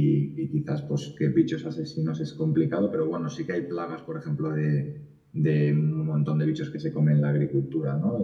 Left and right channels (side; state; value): both; identical; correlation 1.00